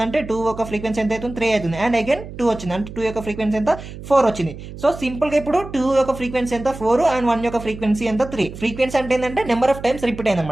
2 యొక్క ఫ్రీక్వెన్సీ ఎంత అవుతుంది, 3 అవుతుంది. అండ్ అగైన్ 2 వచ్చింది అంటే 2 యొక్క ఫ్రీక్వెన్సీ ఎంత, 4 వచ్చింది. సో సింపుల్ గా ఇప్పుడు 2 యొక్క ఫ్రీక్వెన్సీ ఎంత, 4. అండ్ 1 యొక్క ఫ్రీక్వెన్సీ ఎంత, 3. ఫ్రీక్వెన్సీ అంటే ఏంటంటే నెంబర్ ఆఫ్ టైమ్స్ రిపీట్ అయింది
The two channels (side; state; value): right; noise; hum, 13 dB below the sound